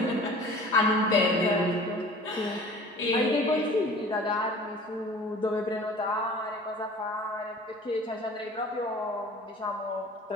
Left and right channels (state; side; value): normal; both; correlation 0.45